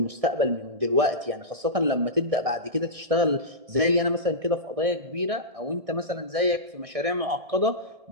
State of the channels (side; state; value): left; late; 1.6 ms